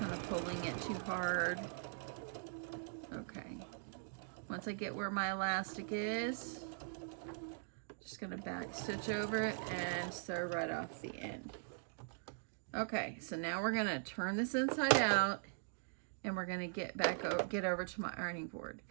of pulling it too hard. Okay, once I get where my elastic is, just gonna back stitch over it and sew right off the end. Okay, so now we're gonna turn this inside out, and we're gonna get over to my ironing board.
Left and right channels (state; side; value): silent; left; digital silence